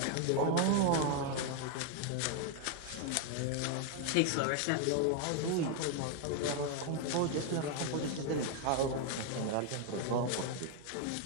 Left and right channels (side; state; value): both; different; correlation 0.01